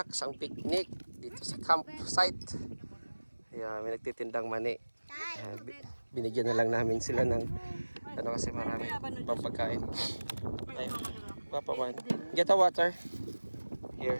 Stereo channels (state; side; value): inverted; both; correlation -1.00